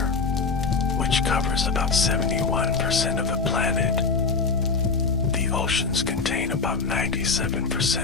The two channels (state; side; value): quieter; right; 4.6 dB